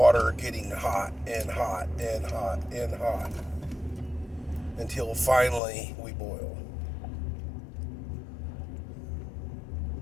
getting hot and hot and hot and hot until finally we boil.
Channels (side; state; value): right; drops out; at 5.6 s